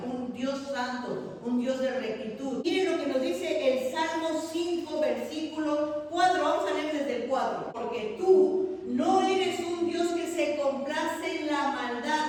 un Dios santo, un Dios de rectitud. Miren lo que nos dice el Salmo 5, versículo 4. Vamos a leer desde el 4. Porque tú no eres un Dios que se complace en la maldad.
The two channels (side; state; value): both; identical; correlation 1.00